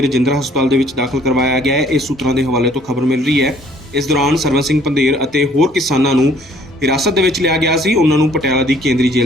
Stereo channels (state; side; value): normal; both; correlation 0.59